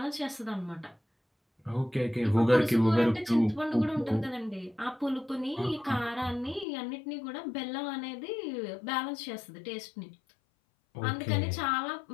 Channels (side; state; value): right; drops out; at 6.7 s